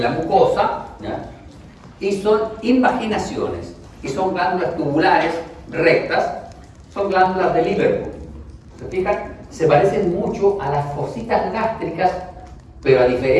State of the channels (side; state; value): both; identical; correlation 1.00